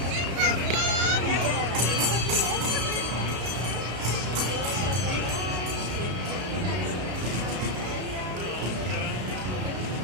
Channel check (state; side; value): late; left; 33 ms